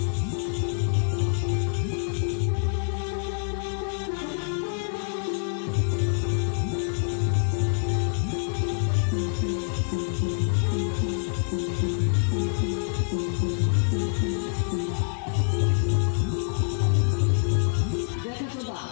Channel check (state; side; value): silent; right; 61 dB below the other